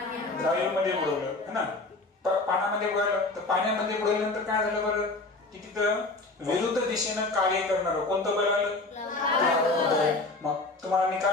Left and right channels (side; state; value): right; quieter; 3.2 dB